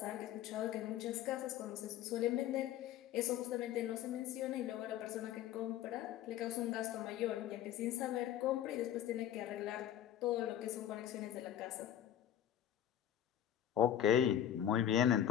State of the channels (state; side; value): quieter; right; 10.9 dB